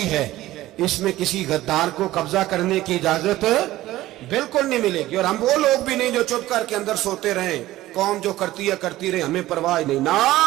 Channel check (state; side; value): quieter; left; 16.0 dB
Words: है। इसमें किसी गद्दार को कब्जा करने की इजाजत बिल्कुल नहीं मिलेगी। और हम वो लोग भी नहीं जो चुप करके अंदर सोते रहे, कौम जो करती है करती रहे, हमें परवाह नहीं। ना,